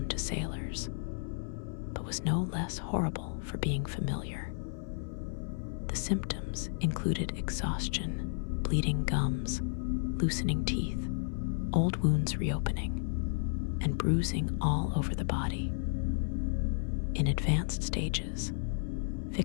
to sailors, but was no less horrible for being familiar. The symptoms included exhaustion, bleeding gums, loosening teeth, old wounds reopening, and bruising all over the body. In advanced stages,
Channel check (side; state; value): right; silent; 56 dB below the other